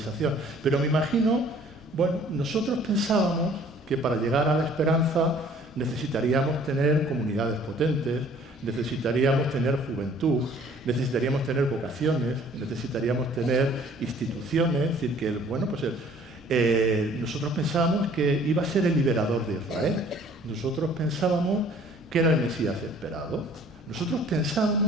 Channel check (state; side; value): normal; both; correlation 0.55